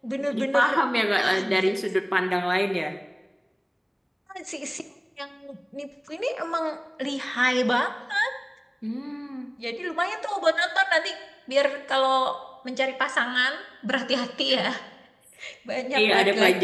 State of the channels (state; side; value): identical; both; correlation 1.00